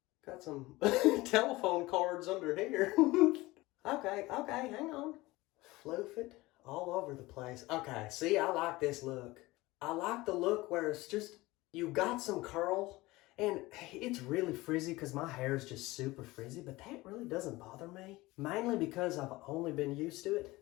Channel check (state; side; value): quieter; right; 20.2 dB